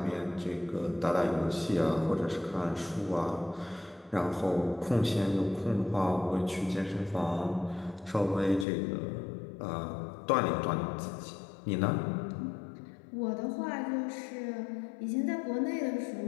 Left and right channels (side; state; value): right; drops out; at 8.7 s